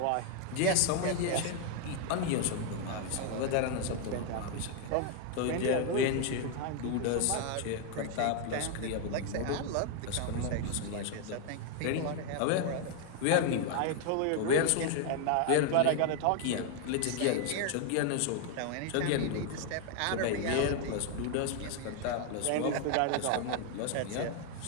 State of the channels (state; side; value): different; both; correlation 0.00